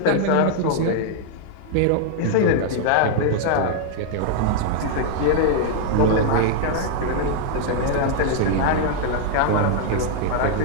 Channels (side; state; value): both; different; correlation 0.00